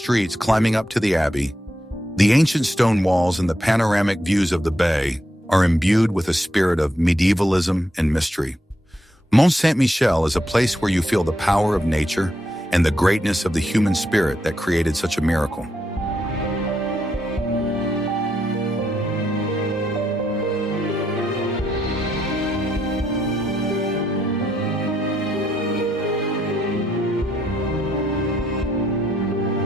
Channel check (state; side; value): normal; both; correlation 0.79